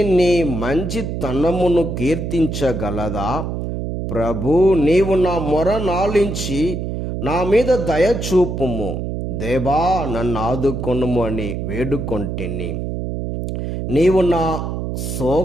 నీ మంచితనమును కీర్తించగలదా? ప్రభు, నీవు నా మొర నాలించి నా మీద దయ చూపుము. దేవా, నన్ను ఆదుకొనుము అని వేడుకొంటిని. నీవు నా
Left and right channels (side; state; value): right; noise; hum, 4 dB below the sound